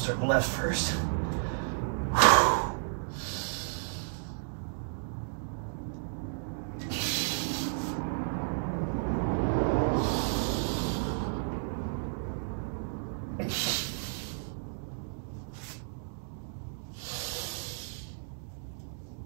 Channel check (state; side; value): silent; left; digital silence